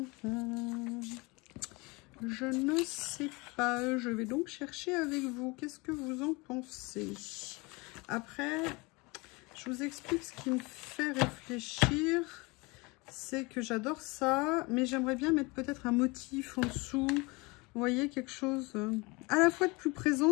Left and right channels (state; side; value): quieter; right; 25.8 dB